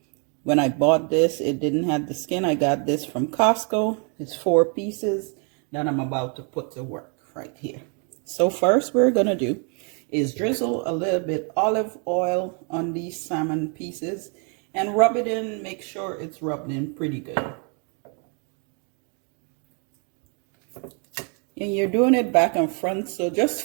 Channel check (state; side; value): quieter; left; 38.4 dB